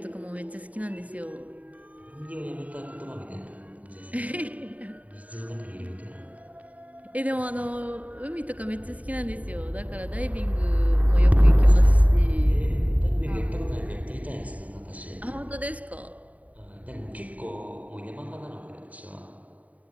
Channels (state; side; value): late; left; 0.070 ms